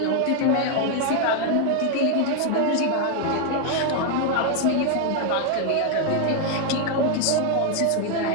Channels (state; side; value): different; both; correlation 0.00